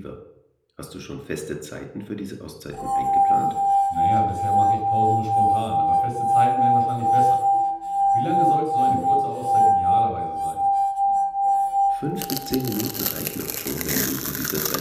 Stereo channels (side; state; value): both; identical; correlation 1.00